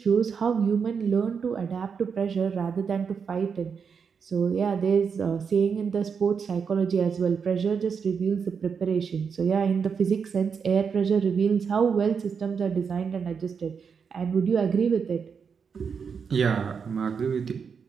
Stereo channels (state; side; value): quieter; left; 6.2 dB